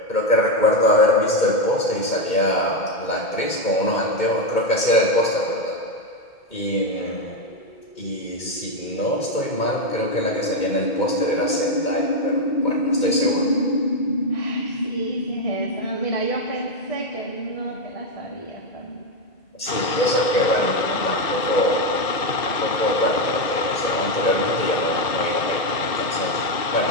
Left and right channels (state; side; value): late; right; 2.1 ms